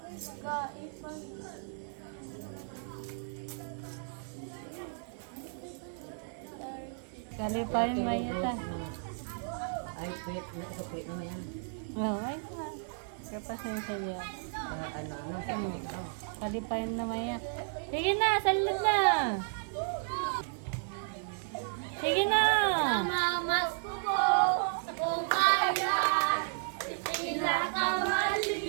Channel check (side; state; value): left; silent; 55 dB below the other